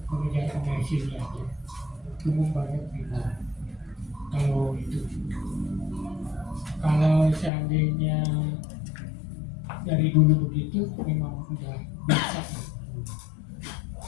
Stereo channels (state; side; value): drops out; right; at 7.5 s